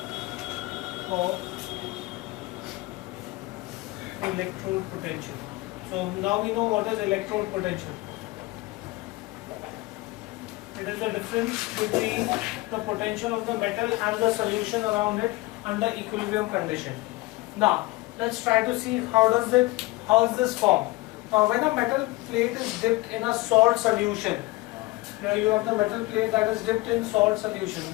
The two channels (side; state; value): right; quieter; 20.9 dB